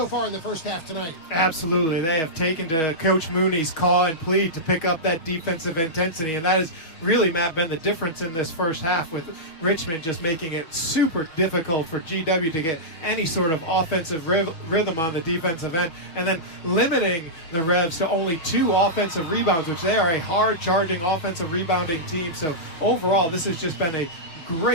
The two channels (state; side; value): late; right; 6.2 ms